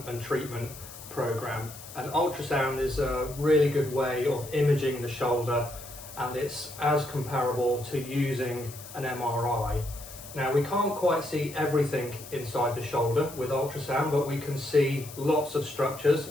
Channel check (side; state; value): left; noise; hiss, 15 dB below the sound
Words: and treatment program. And ultrasound is a really good way of imaging the shoulder, and it's as comparable to using an MRI. Now, we can't quite see everything inside the shoulder with ultrasound, but we can see lots of structures